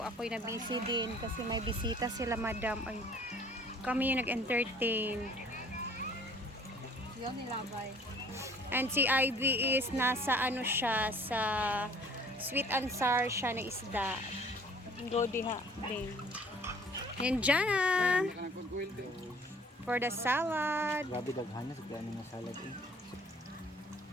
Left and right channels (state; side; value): normal; both; correlation 0.53